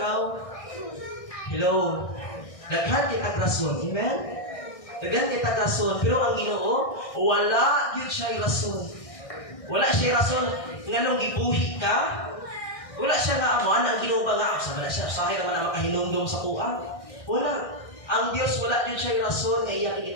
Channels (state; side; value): late; right; 1.6 ms